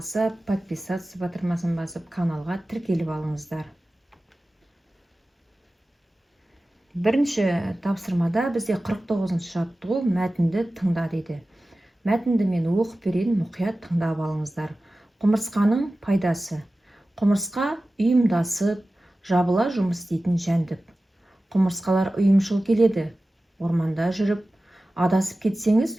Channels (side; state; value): both; normal; correlation 0.96